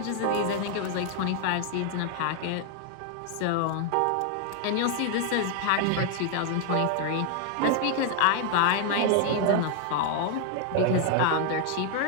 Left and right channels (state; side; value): different; both; correlation 0.00